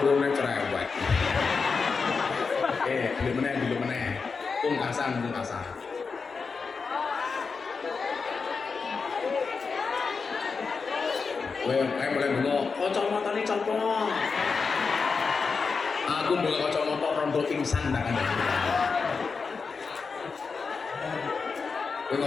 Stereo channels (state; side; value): quieter; right; 5.0 dB